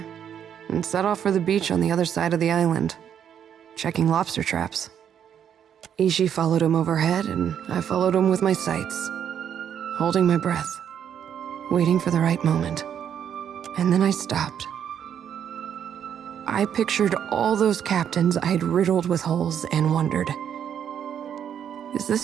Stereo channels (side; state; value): left; quieter; 8.9 dB